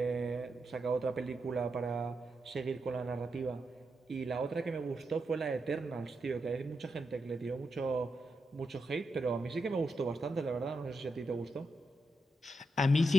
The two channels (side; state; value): both; normal; correlation 0.85